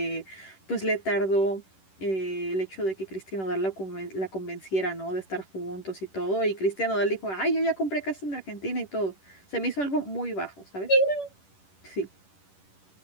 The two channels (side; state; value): right; late; 10 ms